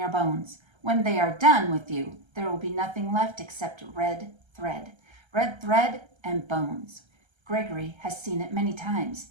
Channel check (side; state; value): left; late; 1.3 ms